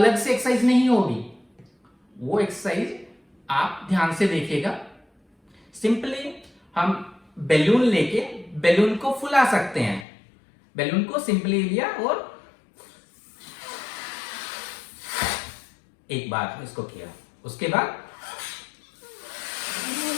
से एक्सरसाइज नहीं होगी। वो एक्सरसाइज आप ध्यान से देखिएगा। सिंपली हम बैलून लेके बैलून को फुला सकते हैं। बैलून को सिंपली लिया और एक बार इसको किया, उसके बाद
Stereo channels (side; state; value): right; drops out; at 10.1 s